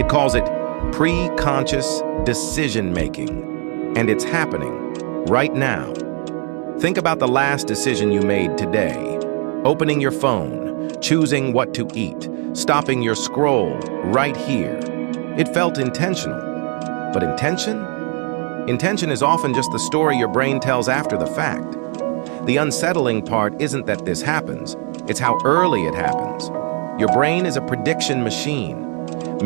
calls it pre-conscious decision-making. And it's happening right now. Think about the last decision you made today. Opening your phone, choosing what to eat, stopping your scroll right here. It felt intentional. But intention? Intention is often just the story your brain tells after the fact. The unsettling part isn't that this happens, it's how early it happens. Your brain is a prediction machine.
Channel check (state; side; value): quieter; left; 38.4 dB